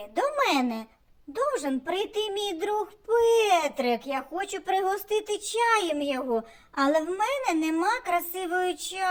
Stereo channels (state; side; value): identical; both; correlation 1.00